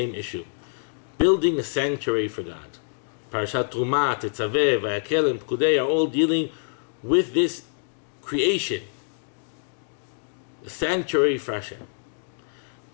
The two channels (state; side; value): silent; right; digital silence